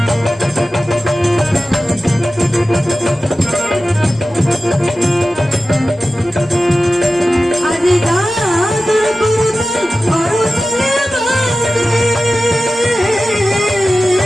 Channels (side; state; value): both; normal; correlation 0.95